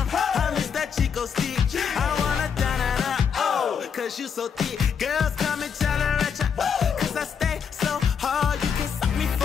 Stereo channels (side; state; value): right; quieter; 7.0 dB